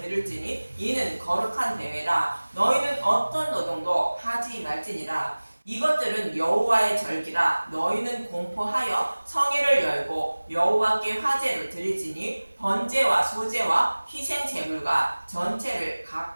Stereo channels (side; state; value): both; inverted; correlation -1.00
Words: 드릴지니 이는 거룩한 대회라. 너희는 어떤 노동도 하지 말지니라. 이것들은 여호와의 절기라. 너희는 공포하여 성회를 열고 여호와께 화제를 드릴지니 번제와 소제와 희생 제물과 전체를